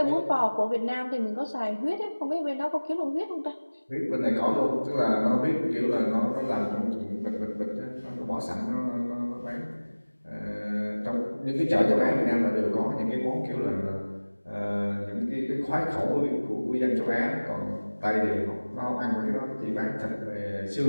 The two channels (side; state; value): both; inverted; correlation -1.00